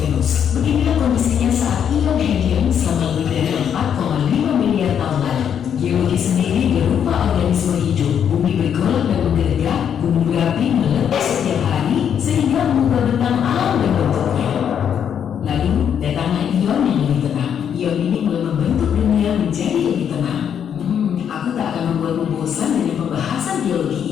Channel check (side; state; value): right; quieter; 8.4 dB